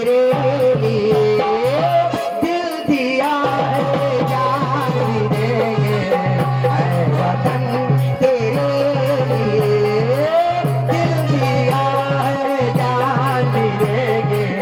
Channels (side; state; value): both; identical; correlation 1.00